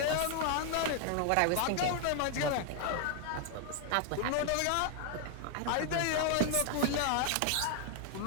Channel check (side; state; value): both; different; correlation 0.01